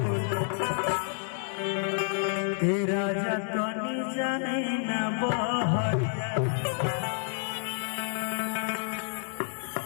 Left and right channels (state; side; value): silent; right; digital silence